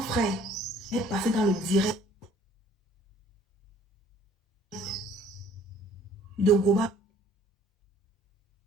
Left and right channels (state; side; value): normal; both; correlation 0.56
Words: est passé dans le direct de Goba.